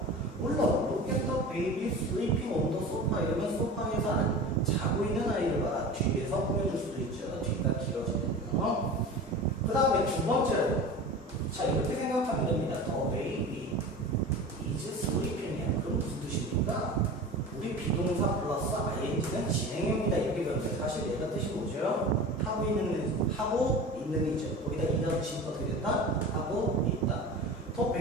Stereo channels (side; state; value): both; normal; correlation 0.34